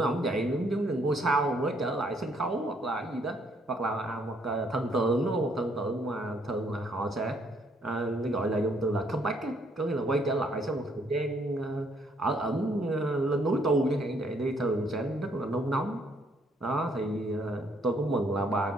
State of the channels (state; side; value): normal; both; correlation 0.68